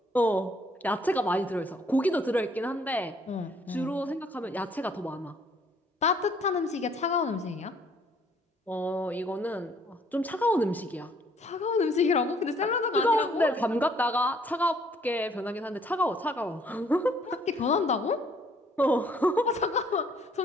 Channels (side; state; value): both; normal; correlation 0.62